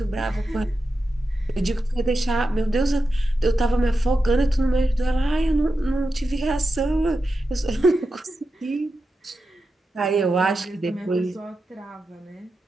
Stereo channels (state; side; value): normal; both; correlation 0.90